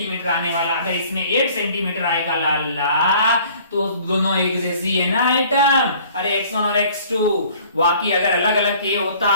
आने वाला। अगर इसमें 8 सेंटीमीटर आएगा लाला तो दोनों एक जैसी है ना आइटम। अरे x1 और x2 वाकई अगर अलग अलग के होता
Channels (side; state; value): both; inverted; correlation -0.53